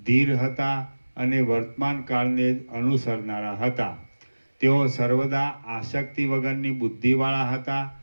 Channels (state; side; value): inverted; both; correlation -1.00